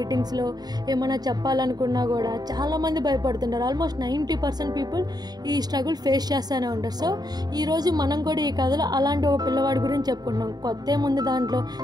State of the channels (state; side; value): late; left; 0.19 ms